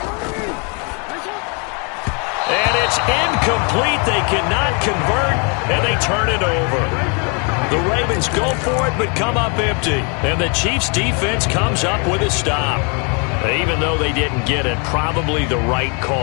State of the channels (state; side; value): quieter; right; 35.3 dB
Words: And it's incomplete. They cannot convert, and they turn it over. The Ravens go for it, but come up empty. And the Chiefs' defense comes up with a stop. Even though they didn't get it, probably the right